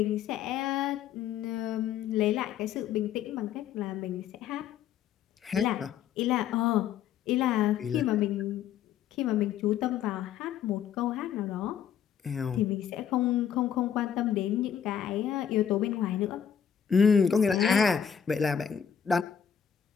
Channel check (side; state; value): right; quieter; 8.4 dB